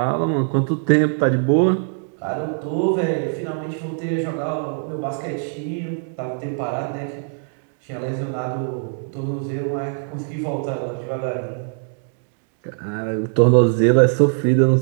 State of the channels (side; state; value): left; silent; 64 dB below the other